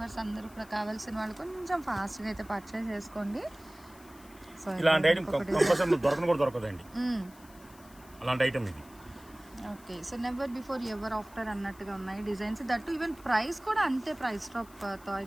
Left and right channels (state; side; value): noise; left; hiss, 24 dB below the sound